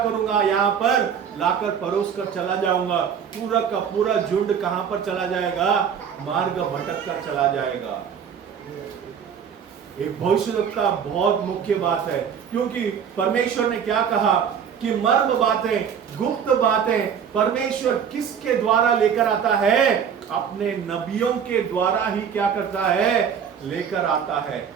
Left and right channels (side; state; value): left; quieter; 7.6 dB